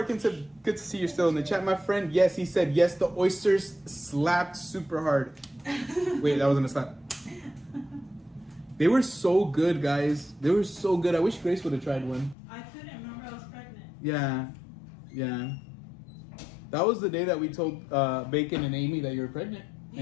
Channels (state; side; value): drops out; right; at 12.4 s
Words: Good to see you're still in the chat, my friend. Yes, he said yes, the oysters slapped super hard. Wait, that wasn't a slap. They were so good, guys. They were so good. I wish Grace would have tried one. I couldn't remember I was pregnant. Yeah. That was the day that we told Bacon and Amy that you were pregnant.